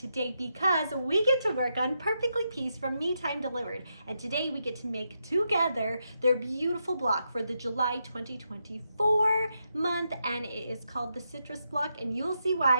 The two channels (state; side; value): inverted; both; correlation -0.83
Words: because we get to work on Perfectly Pieced from Me Time Delivered. And today we get to make together their beautiful block for the July 2024 month. And it is called the Citrus Block. And you'll see